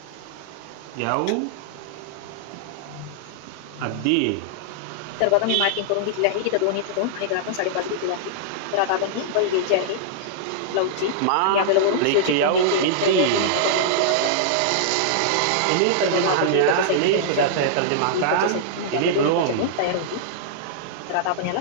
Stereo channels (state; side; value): different; both; correlation -0.02